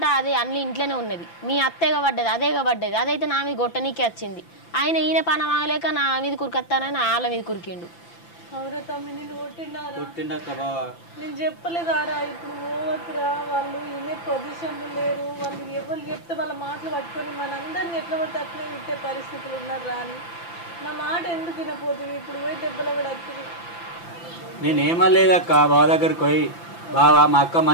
అది అన్ని ఇంట్లోనే ఉన్నది. మీ అత్తేగా పడ్డది, అదేగా పడ్డది. అదైతే నా మీద గొట్టనీకే వచ్చింది. ఈయన పని వాగలేక నా మీద కురికొత్తానని వాళ్ళ మీద కురికిండు. అవురా తమ్మి, నేను కొట్టిండారా? నేను చెప్పలేదారా? ఇప్పుడు పోవద్దురా, వాళ్ళు ఇనే పొజిషన్లు లేరు. వాళ్ళు ఎవరు చెప్తే వాళ్ళ మాటలు పట్టుకొని మనందరిని ఎట్లా పడితే అట్లే విట్టే పరిస్థితులు ఉన్నారా అని నా మాట ఎందుకు వినపోతుంది? ఇప్పుడు పోయి దెబ్బలు కూడా వస్తుంది. నేనేమలేదక్క, బావ దగ్గరికి పోయి బావా మా అక్క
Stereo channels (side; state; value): right; late; 5.9 ms